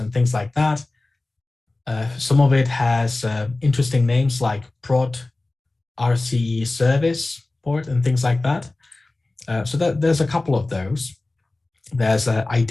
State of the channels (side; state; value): right; quieter; 3.0 dB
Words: things like that. Some of it has interesting names like prod RCE service port and things like that. So there's a couple of those. There's an